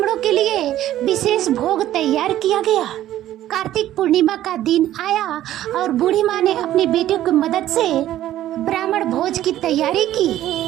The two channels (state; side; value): quieter; left; 13.1 dB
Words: के लिए विशेष भोग तैयार किया गया। कार्तिक पूर्णिमा का दिन आया और बूढ़ी माँ ने अपने बेटे की मदद से ब्राह्मण भोज की तैयारी